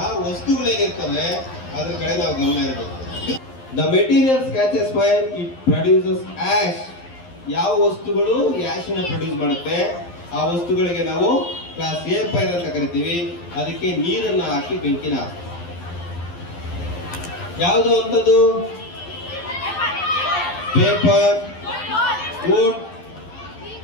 ವಸ್ತುಗಳೇನಿರ್ತವೆ ಅದ್ರ ಕಡೆ ನಾವು ಗಮನ ಇರಬೇಕು. The materials catches fire, it produces ash. ಯಾವ ವಸ್ತುಗಳು ಆಶಿನ ಪ್ರೊಡ್ಯೂಸ್ ಮಾಡುತ್ತೆ ಆ ವಸ್ತುಗಳಿಗೆ ನಾವು ಕ್ಲಾಸ್ ಎ ಫೈರ್ ಅಂತ ಕರಿತೀವಿ. ಅದಕ್ಕೆ ನೀರನ್ನ ಹಾಕಿ ಬೆಂಕಿನ ಹಾಕ್ತೀವಿ. ಯಾವುದು ಅಂತದ್ದು? ಪೇಪರ್, ವುಡ್,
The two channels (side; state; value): right; late; 11 ms